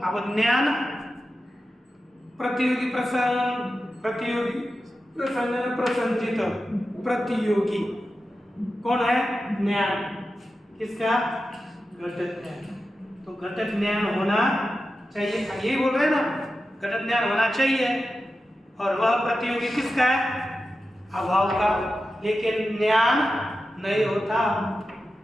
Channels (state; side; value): normal; both; correlation 0.92